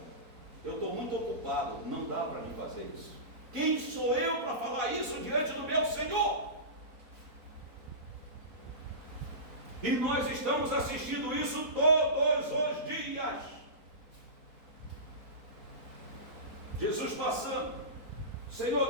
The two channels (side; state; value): left; late; 4.1 ms